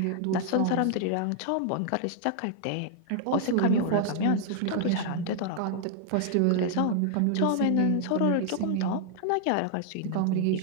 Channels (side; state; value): both; different; correlation 0.00